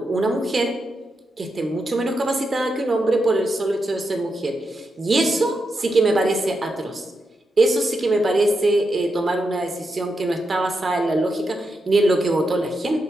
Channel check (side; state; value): both; normal; correlation 0.85